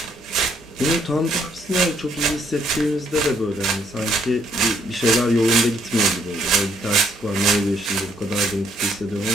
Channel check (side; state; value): both; normal; correlation 0.69